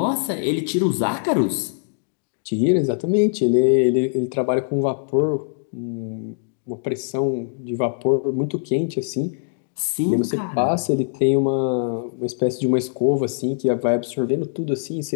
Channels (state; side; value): silent; right; digital silence